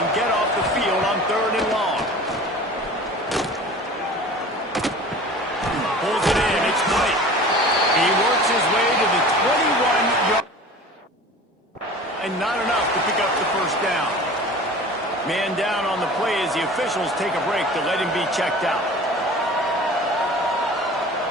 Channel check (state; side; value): normal; both; correlation 0.41